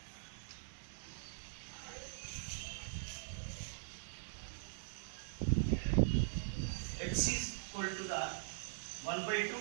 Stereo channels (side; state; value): left; silent; digital silence